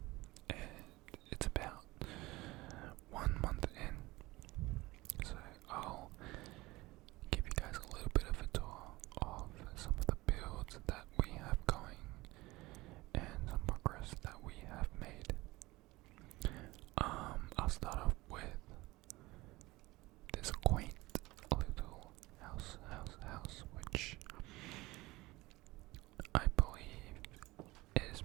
and it's about 1 month in. So I'll give you guys a little bit of a tour of some of the builds that we have going and some progress that we have made. I'll start off with this quaint little house, which I believe is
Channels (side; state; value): left; quieter; 20.4 dB